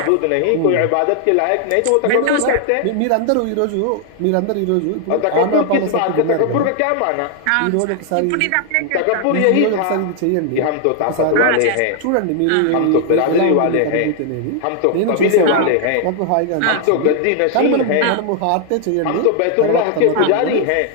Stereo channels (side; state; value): both; different; correlation 0.00